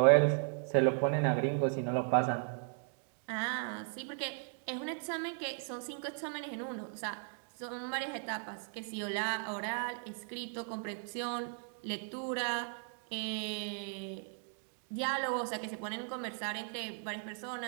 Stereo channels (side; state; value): left; silent; 53 dB below the other